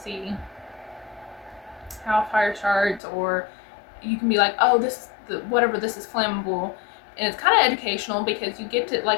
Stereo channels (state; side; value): drops out; right; at 3.0 s